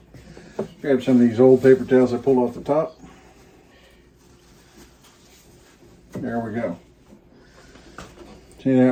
Grab some of these old paper towels I pulled off the top. There we go. See, that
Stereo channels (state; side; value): identical; both; correlation 1.00